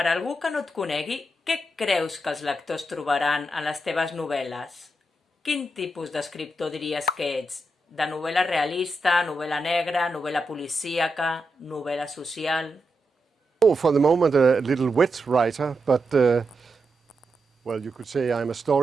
algú que no et conegui, què creus que els lectors trobaran en les teves novel·les? Quin tipus d'escriptor diries que ets? De novel·la realista, novel·la negra, novel·la policíaca, novel·la social? Oh, for the moment a little wet writer, but well, you could say I'm a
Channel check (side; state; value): both; normal; correlation 0.86